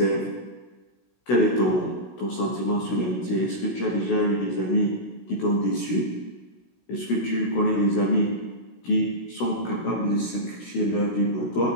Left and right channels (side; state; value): right; late; 16 ms